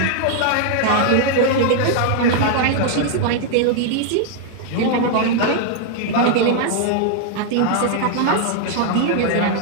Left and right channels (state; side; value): different; both; correlation 0.00